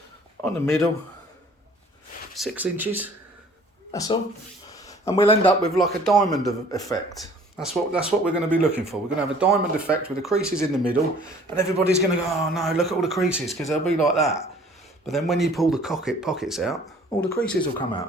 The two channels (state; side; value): normal; both; correlation 0.53